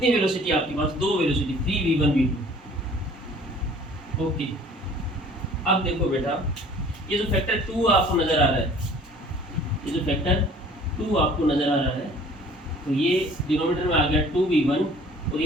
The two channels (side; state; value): both; normal; correlation 0.51